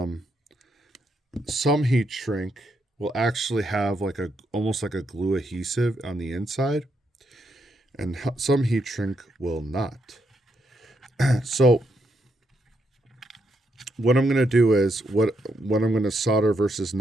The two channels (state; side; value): normal; both; correlation 0.79